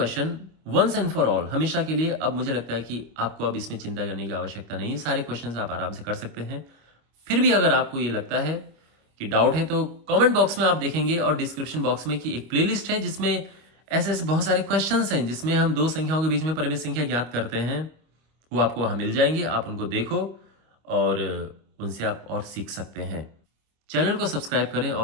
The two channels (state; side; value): late; left; 25 ms